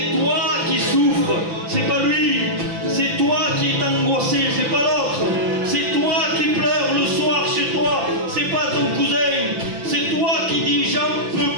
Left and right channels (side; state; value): left; late; 5.9 ms